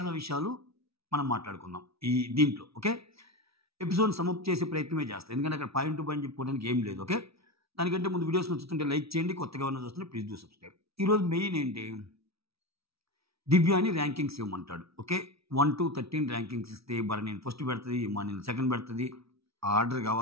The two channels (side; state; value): left; late; 0.76 ms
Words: విషయాలు మనం మాట్లాడుకుందాం ఈ దీంట్లో. ఓకే, ఎపిసోడ్ సమ్మప్ చేసే ప్రయత్నమే చేస్తాం, ఎందుకంటే అక్కడ పాయింట్ టు పాయింట్ చెప్పుకోవడానికి ఏం లేదు. ఓకే, దానికంటే ముందు వీడియోస్ నచ్చుతుంటే లైక్ చేయండి, కొత్తగా ఉన్న చూస్తుంటే ప్లీజ్ డూ సబ్స్క్రైబ్. ఈరోజు మెయిన్ ఏంటి, దివ్యాని ర్యాంకింగ్స్ ఇవ్వమంటాడు. ఓకే, 1 to 13 ర్యాంకింగ్స్ ఇస్తే భరణిని ఫస్ట్ పెడుతుంది, ఇమానిని సెకండ్ పెడుతుంది. ఆర్డర్